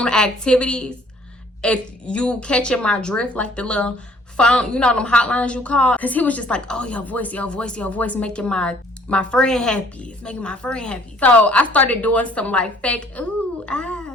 activities. If you catching my drift, like the little phone, you know them hotlines you call? Cause he was just like, oh, your voice making my friend happy. It's making my friend happy. So I started doing some like fake ooh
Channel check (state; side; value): normal; both; correlation 0.59